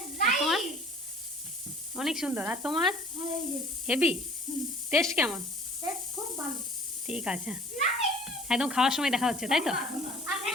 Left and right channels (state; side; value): normal; both; correlation 0.50